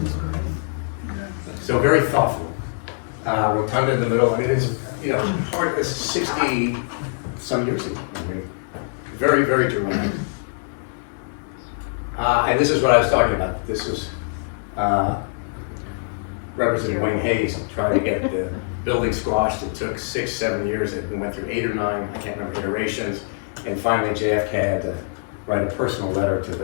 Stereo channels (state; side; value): silent; right; digital silence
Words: So very thoughtful. Rotunda in the middle. I mean, it's hard. It's 60 some years ago. I mean, very, very dramatic. And this is what I was talking about. This was Representative Wayne Hayes trying to get the building squashed. It took 6, 7 years. It went through 8 or 9, I can't remember, iterations. And finally, JFK had to write a personal letter to